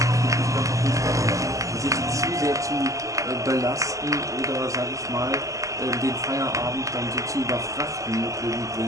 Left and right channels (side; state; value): left; late; 0.16 ms